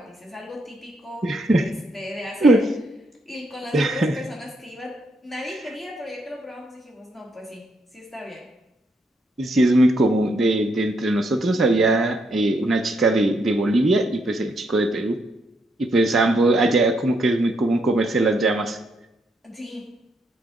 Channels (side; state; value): both; normal; correlation 0.76